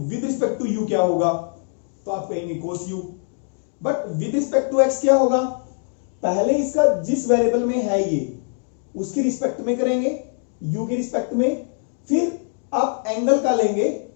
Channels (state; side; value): silent; right; 64 dB below the other